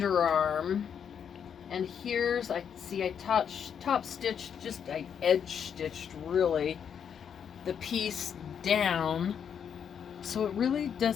And here's, I see I top stitched, I edge stitched really the piece down. So it really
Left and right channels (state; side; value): quieter; right; 7.8 dB